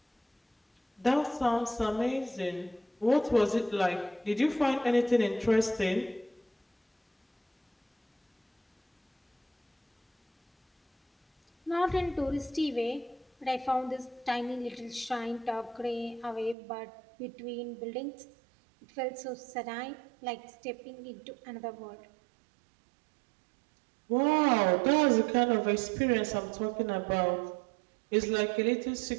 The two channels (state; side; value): drops out; left; at 16.6 s